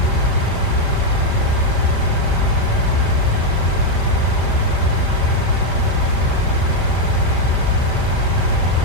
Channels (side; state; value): right; late; 5.1 ms